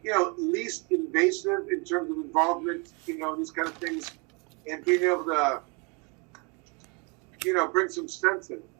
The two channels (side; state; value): left; quieter; 31.1 dB